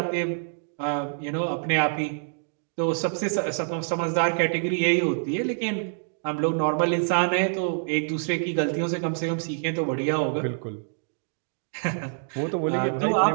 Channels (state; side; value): silent; left; digital silence